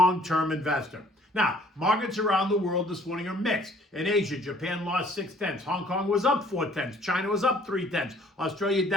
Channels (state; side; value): normal; both; correlation 0.58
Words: investor. Now, markets around the world this morning are mixed. In Asia, Japan lost 0.6. Hong Kong was up 0.4. China was up 0.3. Australia